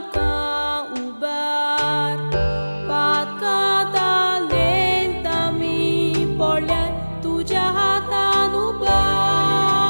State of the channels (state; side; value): inverted; both; correlation -1.00